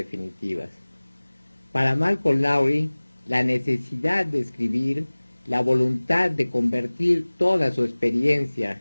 Para Malcolm Lowry, la necesidad de escribir, la voluntad de convertir toda su experiencia,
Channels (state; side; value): inverted; both; correlation -1.00